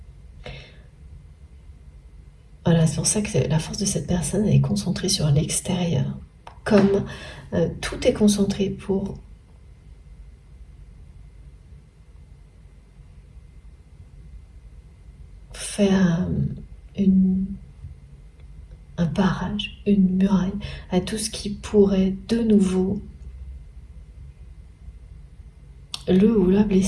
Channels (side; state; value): both; identical; correlation 1.00